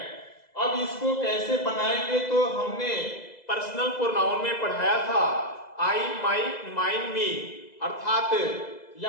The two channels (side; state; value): right; late; 2.0 ms